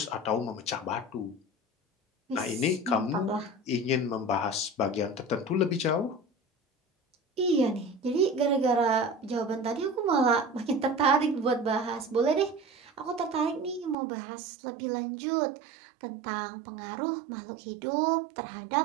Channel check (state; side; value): drops out; left; at 14.0 s